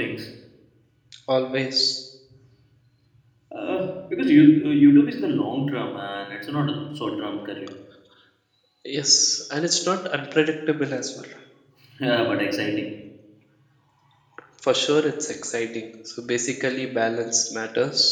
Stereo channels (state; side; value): identical; both; correlation 1.00